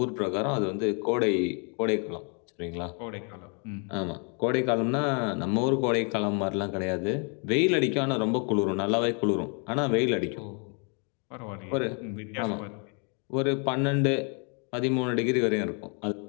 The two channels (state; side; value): quieter; right; 37.5 dB